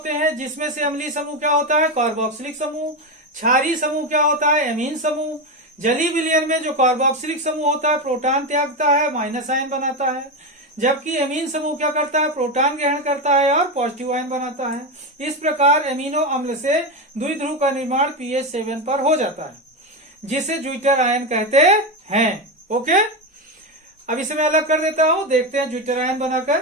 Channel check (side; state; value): both; normal; correlation 0.13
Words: हैं, जिसमें से अम्लीय समूह क्या होता है, कार्बोक्सिलिक समूह। क्षारीय समूह क्या होता है, एमीन समूह। जलीय विलयन में जो कार्बोक्सिलिक समूह होता है, प्रोटॉन त्यागता है, माइनस आयन बनाता है। जबकि एमीन समूह क्या करता है, प्रोटॉन ग्रहण करता है और पॉजिटिव आयन बनाता है। इस प्रकार एमिनो अम्ल से द्विध्रुव का निर्माण pH 7 पर हो जाता है, जिसे ज्विटर आयन कहते हैं। ओके। अब इसे मैं अलग कर देता हूं, देखते हैं ज्विटर आयन